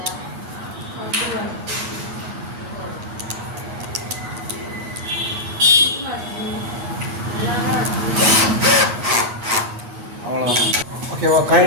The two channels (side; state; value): left; late; 8.4 ms